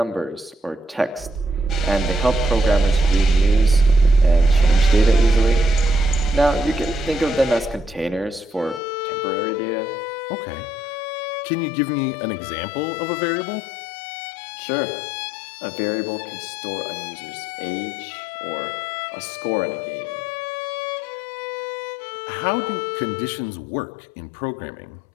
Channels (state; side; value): drops out; right; at 8.8 s